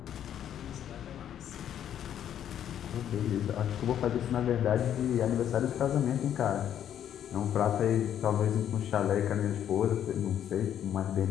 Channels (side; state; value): right; quieter; 10.1 dB